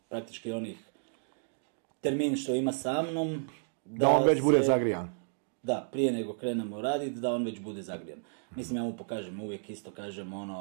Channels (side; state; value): left; silent; digital silence